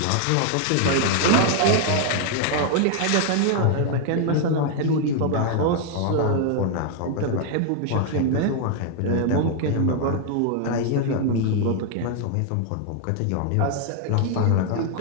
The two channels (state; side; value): different; both; correlation 0.00